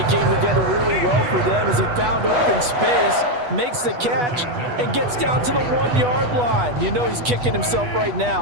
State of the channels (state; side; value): late; left; 8.2 ms